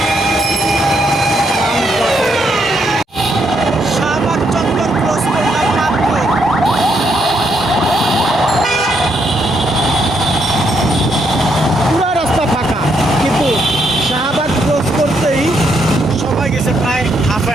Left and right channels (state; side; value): normal; both; correlation 0.76